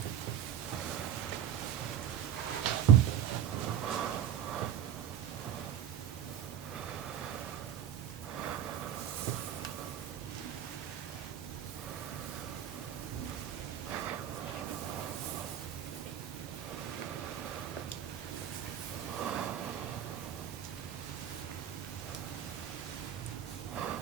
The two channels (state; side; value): quieter; left; 9.7 dB